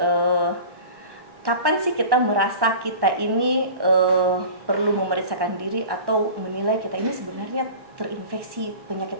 kapan sih kita merasa kita ini perlu memeriksakan diri atau menilai kita ini sebenarnya terinfeksi penyakit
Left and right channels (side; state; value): left; late; 1.1 ms